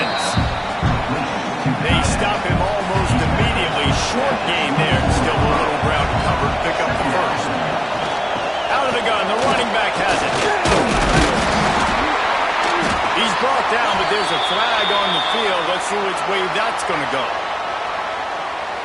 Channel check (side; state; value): both; identical; correlation 1.00